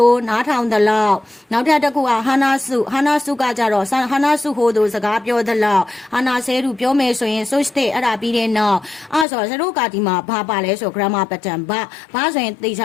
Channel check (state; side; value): drops out; right; at 9.2 s